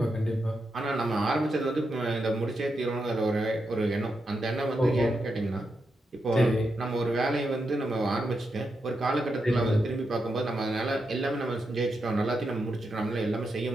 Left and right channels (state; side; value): normal; both; correlation 0.85